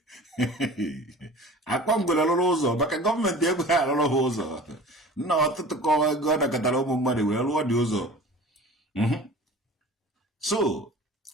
akwa ngwere rụrụ ụzọ maka gọọmenti ego ha arụrụ ha ụzọ nna ọtụtụ kọwa ego ọ nakọtara ụmụ mmadụ wee rụọ dị ụzọ so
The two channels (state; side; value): normal; both; correlation 0.41